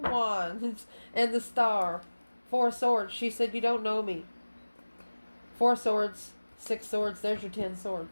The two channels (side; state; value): both; inverted; correlation -1.00